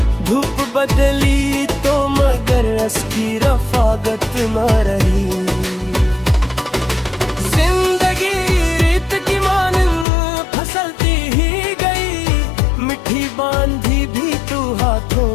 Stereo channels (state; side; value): drops out; right; at 10.1 s